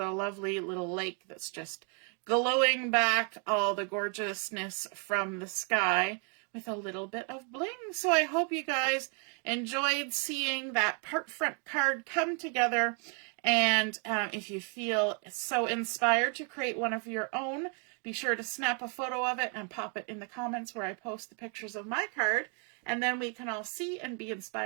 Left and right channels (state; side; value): quieter; left; 39.2 dB